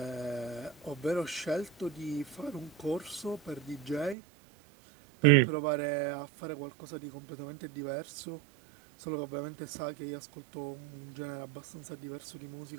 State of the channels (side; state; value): left; drops out; at 4.2 s